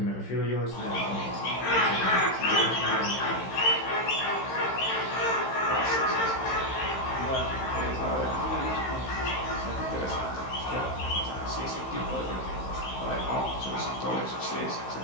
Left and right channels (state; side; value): late; right; 15 ms